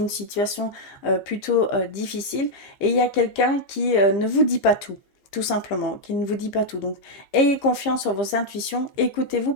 situation plutôt difficile et il y a quelqu'un qui ne vous dit pas tout simplement, qui ne vous dit pas tout. Donc, ayez confiance en vos intuitions, écoutez-vous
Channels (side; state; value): right; late; 15 ms